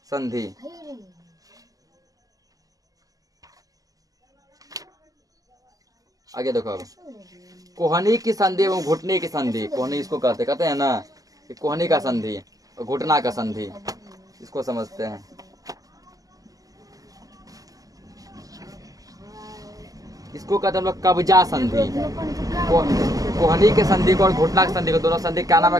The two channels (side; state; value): left; late; 0.17 ms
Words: संधि। आगे देखो, अब कोहनी की संधि एवं घुटने की संधि। कोहनी इसको कहते हैं ना, कि कोहनी का संधि और घुटना का संधि, इसको समझते हैं। इसको कहते हैं हम लोग कब्जा संधि। कोहनी के संधि को और घुटना के संधि को, दोनों संधि क्या नाम